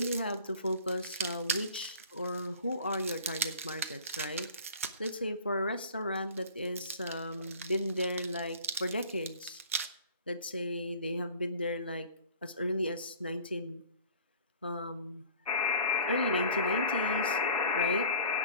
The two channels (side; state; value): both; inverted; correlation -0.45